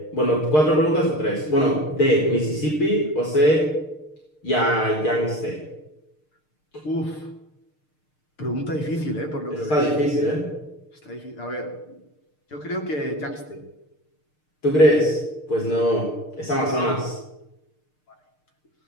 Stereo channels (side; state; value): right; late; 6.6 ms